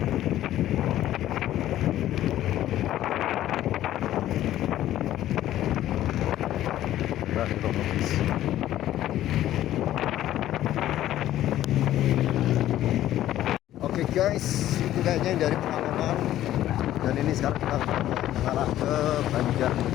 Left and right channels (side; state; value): right; quieter; 13.2 dB